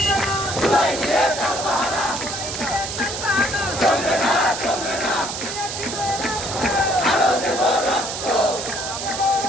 চুলাই নিয়ে তালবাহানা, আরো দেব রক্ত,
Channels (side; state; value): right; noise; hiss, 6 dB below the sound